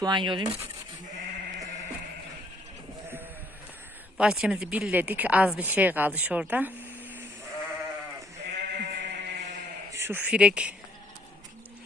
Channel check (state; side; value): normal; both; correlation 0.66